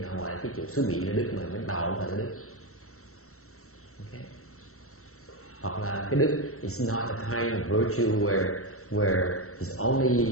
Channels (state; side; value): late; right; 0.63 ms